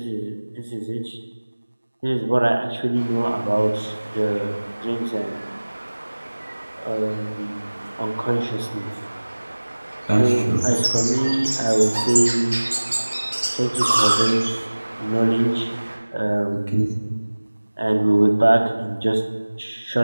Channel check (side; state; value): both; inverted; correlation -1.00